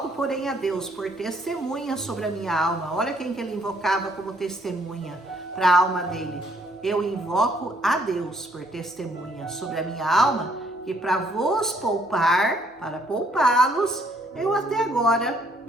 porém, a Deus por testemunha sobre a minha alma. Olha quem que ele invocava como testemunha para a alma dele. Eu invoco a Deus por testemunha sobre a minha alma, que para vos poupar, para poupá-los, eu até agora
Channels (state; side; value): normal; both; correlation 0.66